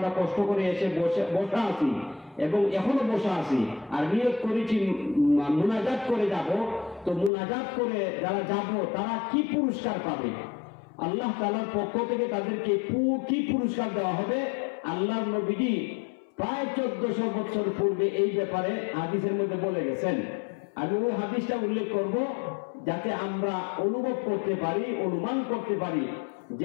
কষ্ট করে এসে বসা আছি এবং এখনো বসা আছি আর নিয়ত করেছি মুনাজাত করে যাব, তো মুনাজাত করে যারা যাব তারা কি পুরস্কার পাবে, আল্লাহ তাআলার পক্ষ থেকে তাদেরকে কি পুরস্কার দেওয়া হবে। আল্লাহ নবীজি প্রায় 1400 বছর পূর্বে এই ব্যাপারে হাদিসের মধ্যে বলে গেছেন। আমি ওই হাদিসটা উল্লেখ করব যাতে আমরা অনুভব করতে পারি, অনুমান করতে পারি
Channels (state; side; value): drops out; right; at 7.3 s